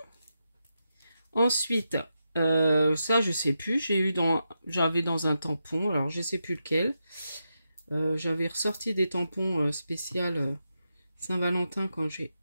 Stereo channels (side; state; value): both; inverted; correlation -0.87